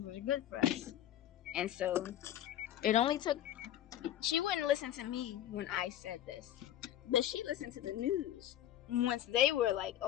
were good for us. And so it only took, she wouldn't listen to me when I said this, but she listened to the news once they were like,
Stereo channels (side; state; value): right; quieter; 12.0 dB